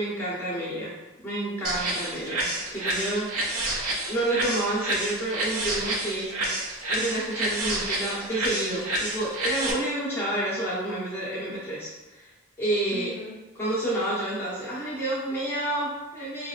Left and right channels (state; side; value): normal; both; correlation 0.26